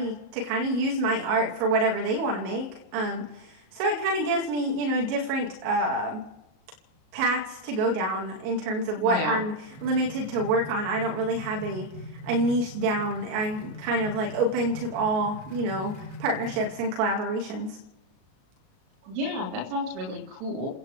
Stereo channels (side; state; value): left; late; 38 ms